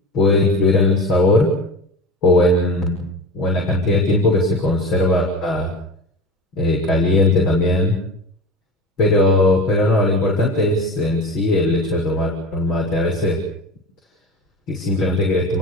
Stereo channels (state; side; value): normal; both; correlation 0.30